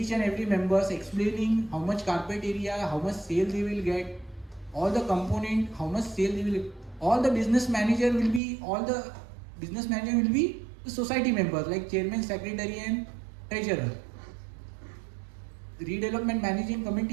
and every members explaining how much carpet area, how much sales he will get, all the component, how much sales he will, all the business manager will be the society members like chairman, secretary and treasurer. The redevelopment managing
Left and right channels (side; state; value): left; drops out; at 8.4 s